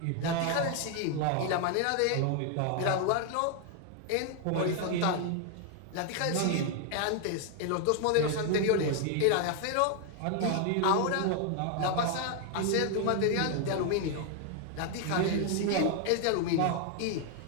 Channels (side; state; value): both; different; correlation 0.01